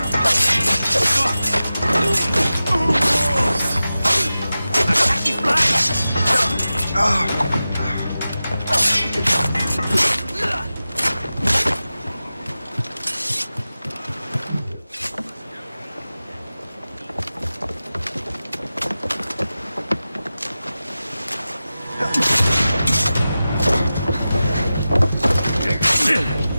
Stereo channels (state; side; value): inverted; both; correlation -0.94